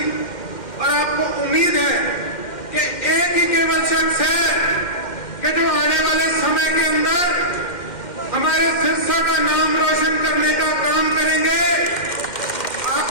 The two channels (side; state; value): right; late; 2.1 ms